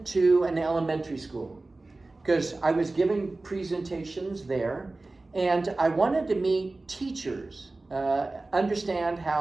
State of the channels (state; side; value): quieter; left; 3.2 dB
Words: to an elementary school because I was giving presentations there, and I wanted to meet teachers, understand